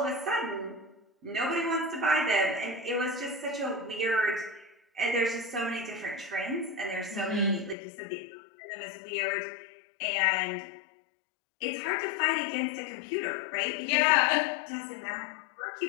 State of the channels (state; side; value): drops out; right; at 7.8 s